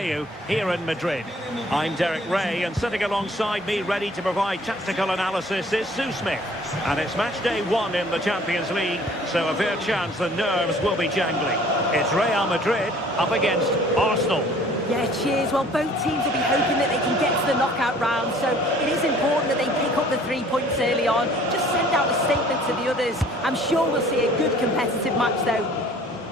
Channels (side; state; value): both; normal; correlation 0.54